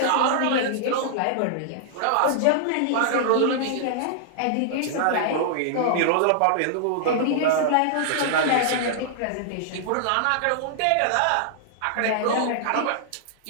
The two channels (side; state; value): both; different; correlation -0.01